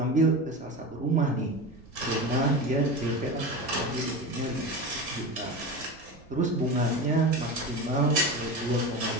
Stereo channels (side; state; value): right; noise; rumble, 24 dB below the sound